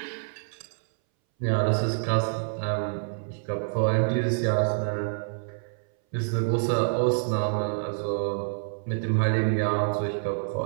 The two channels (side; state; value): left; silent; 60 dB below the other